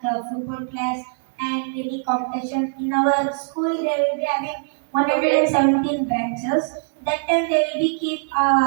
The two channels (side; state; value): left; silent; digital silence